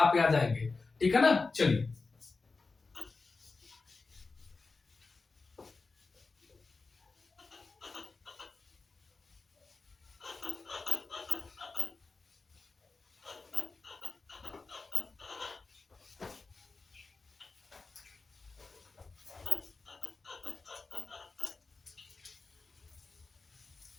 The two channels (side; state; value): right; quieter; 4.0 dB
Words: आ जाएंगे, ठीक है ना। चलिए